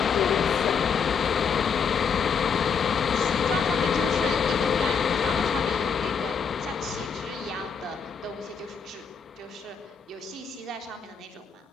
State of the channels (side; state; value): right; quieter; 6.2 dB